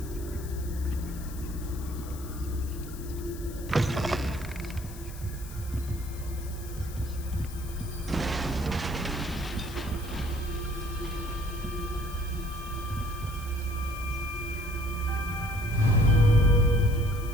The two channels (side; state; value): left; noise; hiss, 17 dB below the sound